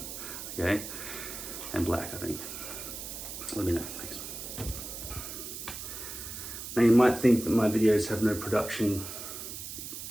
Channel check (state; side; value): noise; right; hiss, 8 dB below the sound